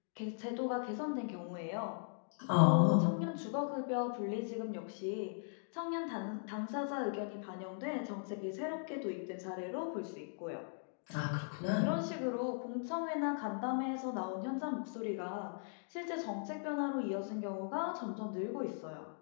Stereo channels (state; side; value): silent; right; digital silence